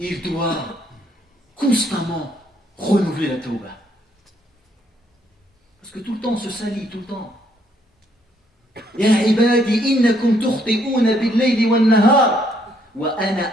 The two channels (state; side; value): normal; both; correlation 0.69